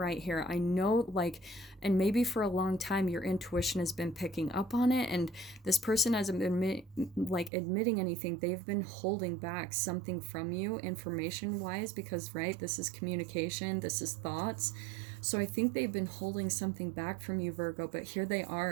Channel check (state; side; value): drops out; left; at 7.5 s